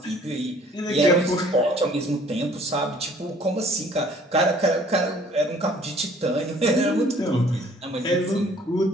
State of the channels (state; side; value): normal; both; correlation 0.56